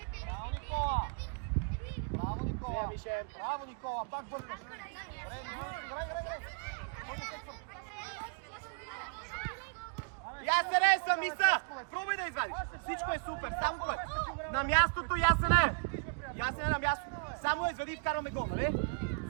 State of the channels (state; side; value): quieter; left; 35.2 dB